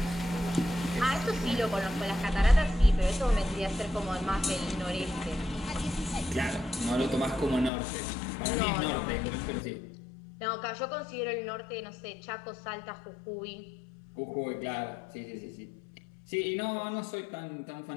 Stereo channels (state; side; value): drops out; right; at 7.7 s